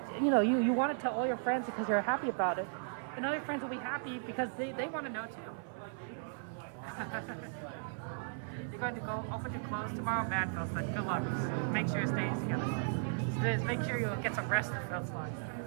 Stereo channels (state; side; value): silent; left; 54 dB below the other